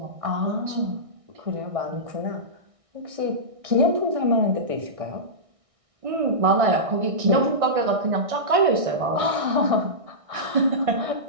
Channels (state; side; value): late; left; 1.6 ms